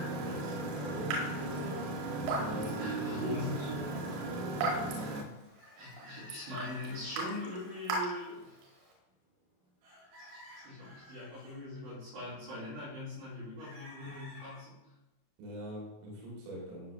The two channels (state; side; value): late; left; 28 ms